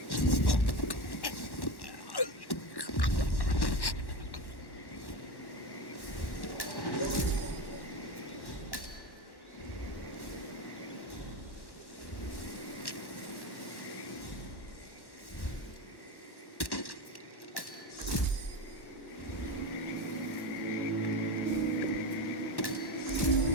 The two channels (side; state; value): right; late; 1.1 ms